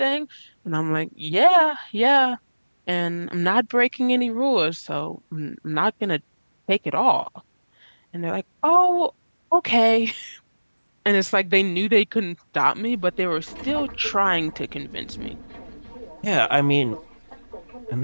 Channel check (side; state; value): both; inverted; correlation -1.00